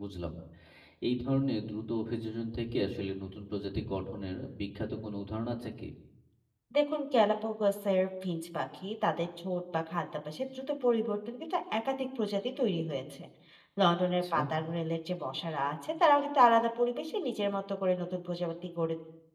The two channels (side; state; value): both; identical; correlation 1.00